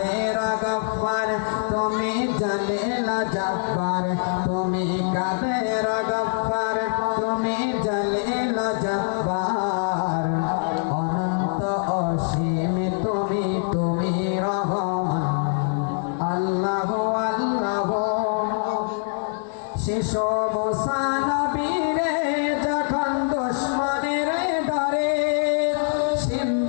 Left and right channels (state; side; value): silent; right; digital silence